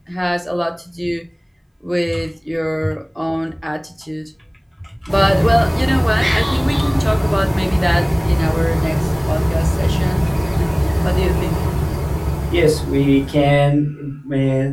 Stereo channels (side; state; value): both; identical; correlation 1.00